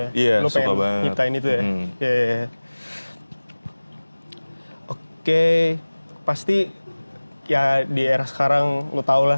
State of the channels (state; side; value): inverted; both; correlation -1.00